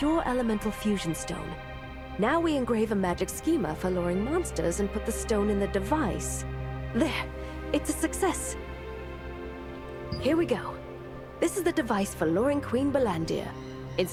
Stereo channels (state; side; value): identical; both; correlation 1.00